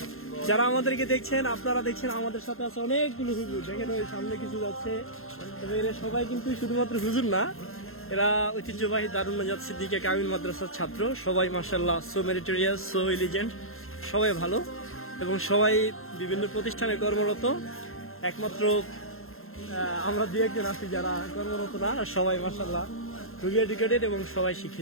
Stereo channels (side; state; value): right; late; 0.61 ms